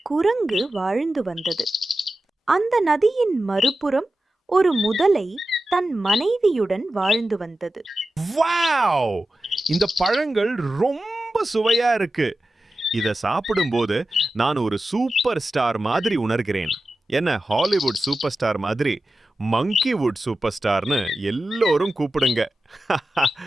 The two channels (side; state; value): both; normal; correlation 0.93